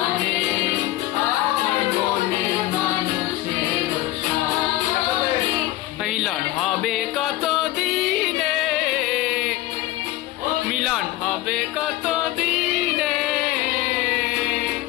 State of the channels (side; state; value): right; quieter; 16.2 dB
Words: আমার মনের মানুষের সনে। মিলন হবে কত দিনে, মিলন হবে কত দিনে,